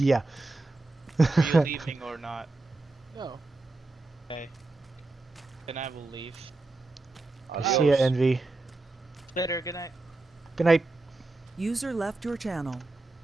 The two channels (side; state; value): left; quieter; 3.1 dB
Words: you. yeah. Are you leaving or not? No. Okay. Then I will leave. See ya, Envy. Later, good night. Good night. User left your channel.